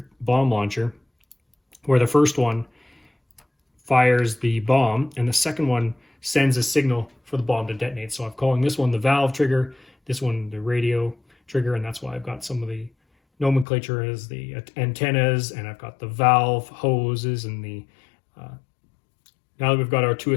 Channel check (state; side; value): drops out; right; at 13.7 s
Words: bomb launcher, where the first one fires the bomb and the second one sends a signal for the bomb to detonate. So I'm calling this one the valve trigger, this one the radio trigger, and that's why I've got some of the nomenclature as the antennas, and I've got the valve hoses, and the now that we've got our 2